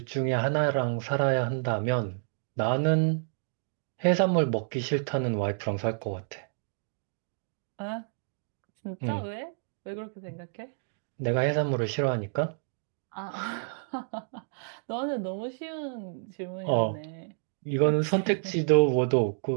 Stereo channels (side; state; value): left; silent; digital silence